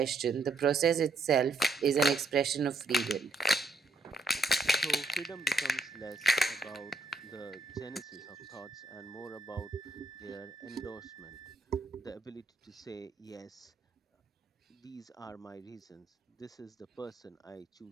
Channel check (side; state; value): left; quieter; 3.3 dB